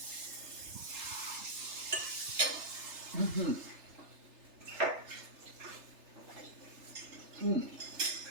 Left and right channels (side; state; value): left; late; 3.3 ms